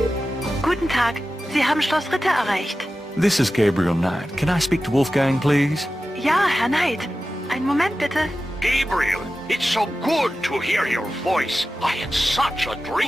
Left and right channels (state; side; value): normal; both; correlation 0.93